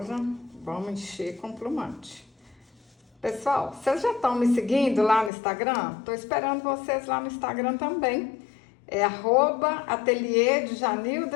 vamos encher com plumante. Pessoal, vocês já estão me seguindo lá no Instagram? Tô esperando vocês lá no Instagram também. É @ateliê de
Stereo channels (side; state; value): right; drops out; at 5.3 s